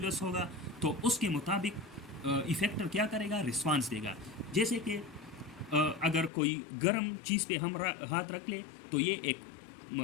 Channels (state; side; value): drops out; right; at 6.3 s